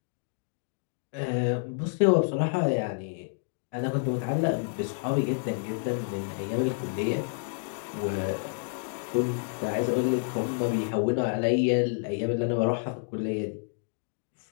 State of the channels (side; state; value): right; silent; digital silence